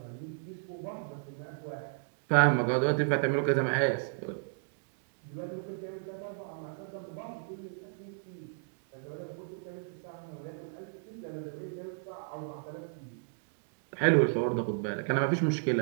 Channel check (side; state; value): left; silent; digital silence